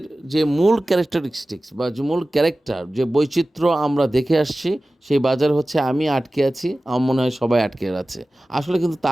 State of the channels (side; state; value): both; normal; correlation 0.96